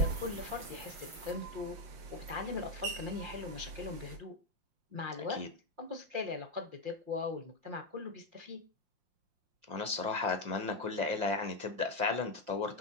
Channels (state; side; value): late; left; 5.7 ms